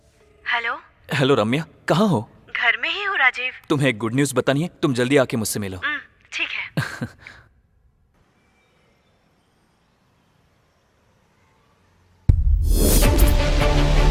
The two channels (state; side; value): identical; both; correlation 1.00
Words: Hello. Hello Ramya, कहाँ हो? घर में ही हूँ राजीव। तुम्हें एक गुड न्यूज बतानी है, तुम जल्दी आके मुझसे मिलो। ठीक है।